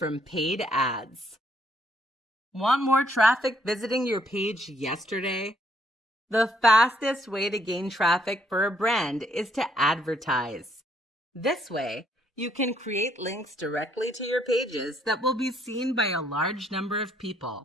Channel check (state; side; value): normal; both; correlation 0.69